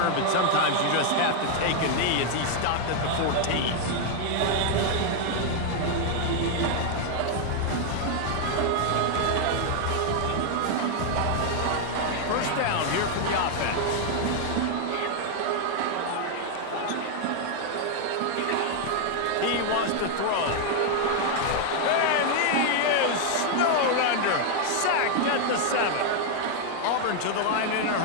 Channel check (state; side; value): different; both; correlation 0.00